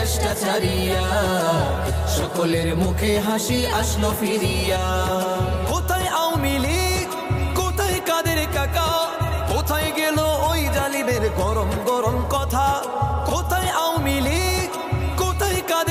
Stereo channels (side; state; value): both; identical; correlation 1.00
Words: ছাড়িয়া, সকলের মুখে হাসি আসলো ফিরিয়া। কোথায় আওয়ামী লীগ, কোথায় কাদের কাকা, কোথায় গেল ওই জালিমের গরম গরম কথা। কোথায় আওয়ামী লীগ, কোথায়